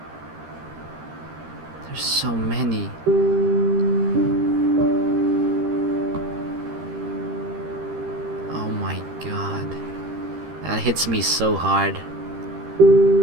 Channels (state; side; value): late; left; 13 ms